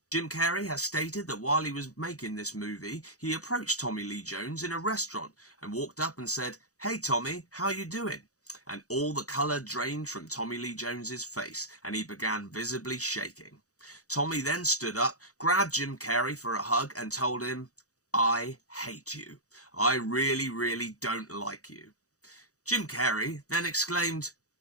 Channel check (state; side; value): late; right; 0.66 ms